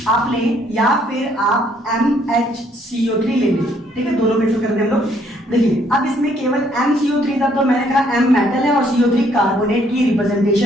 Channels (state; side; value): normal; both; correlation 0.66